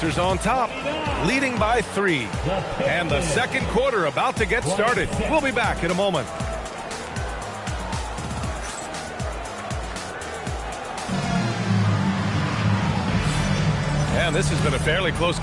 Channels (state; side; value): identical; both; correlation 1.00